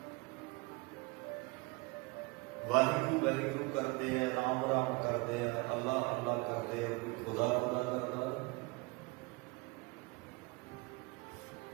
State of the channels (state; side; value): quieter; left; 26.1 dB